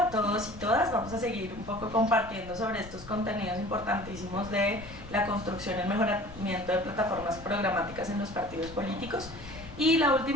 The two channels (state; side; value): noise; left; rumble, 15 dB below the sound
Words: todos y todas. Vamos a seguir un poco compartiendo sobre estos contenidos importantísimos de la construcción y el mejoramiento de plataformas programáticas en los partidos políticos. Y la